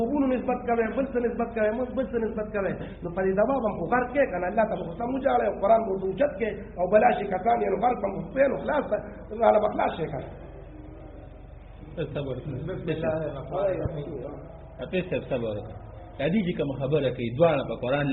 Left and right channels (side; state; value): both; identical; correlation 1.00